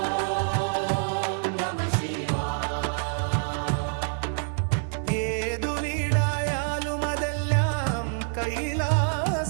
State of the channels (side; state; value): left; silent; 60 dB below the other